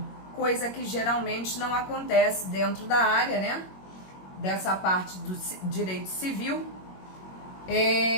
coisa que geralmente não acontece dentro da área, né? Dessa parte do direito civil.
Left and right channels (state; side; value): late; right; 21 ms